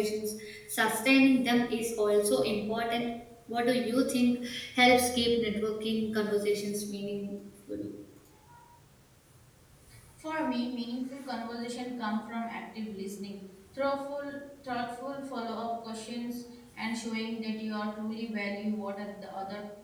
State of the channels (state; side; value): identical; both; correlation 1.00